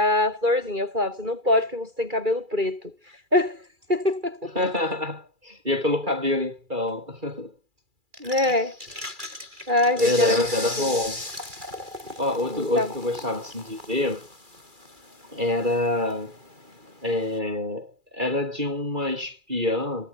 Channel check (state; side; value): late; left; 2.3 ms